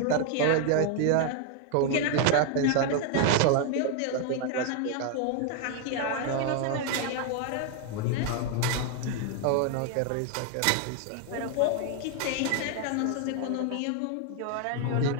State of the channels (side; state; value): both; different; correlation 0.00